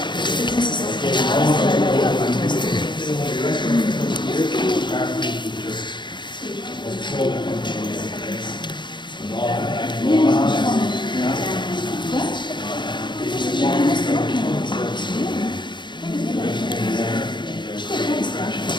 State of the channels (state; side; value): late; right; 0.22 ms